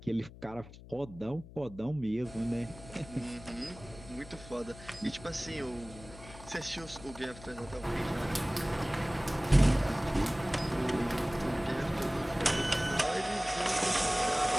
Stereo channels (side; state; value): left; noise; hum, 17 dB below the sound